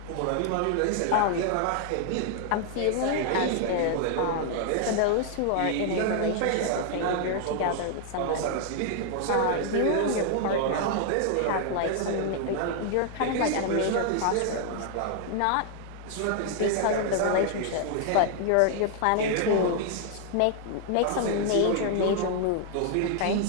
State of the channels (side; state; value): both; different; correlation 0.00